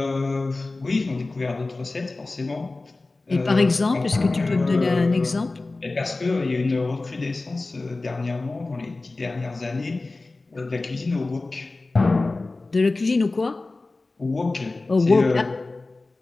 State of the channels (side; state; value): right; quieter; 3.3 dB